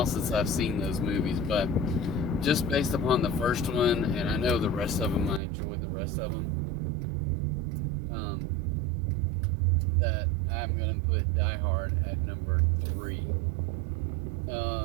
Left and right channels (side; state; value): left; drops out; at 5.4 s